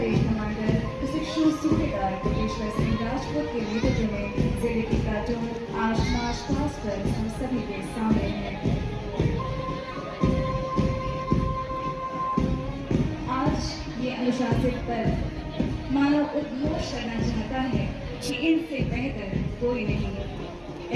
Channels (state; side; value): identical; both; correlation 1.00